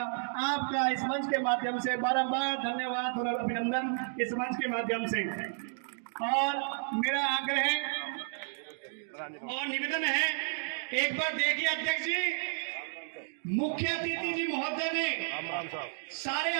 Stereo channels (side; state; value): left; silent; digital silence